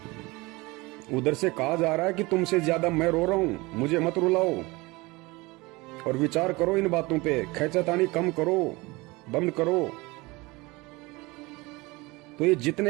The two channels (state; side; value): quieter; left; 23.1 dB